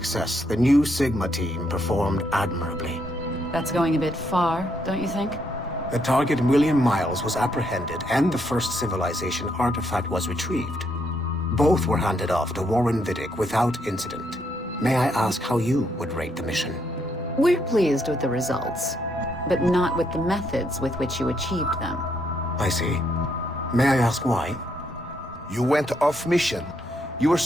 The new Sigma team performed admirably. That's going a bit far, don't you think? The target, William Miles, was apprehended and the first civilization artifact was retrieved. Both were handed off to Warren Vidic without incident. May I ask how you would rate the mission? We're pleased with the results, but not with the methods with which you achieved them. I see. May I ask why? You went off mission. You were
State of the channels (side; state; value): both; normal; correlation 0.75